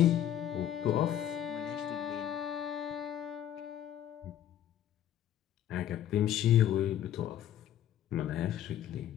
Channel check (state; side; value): quieter; right; 10.9 dB